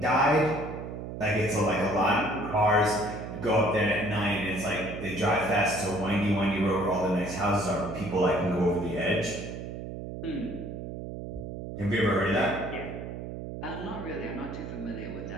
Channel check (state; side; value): noise; right; hum, 8 dB below the sound